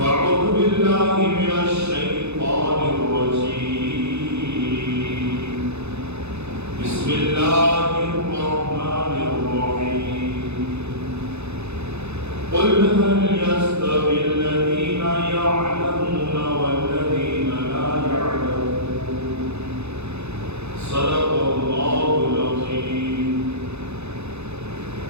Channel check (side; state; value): left; late; 0.81 ms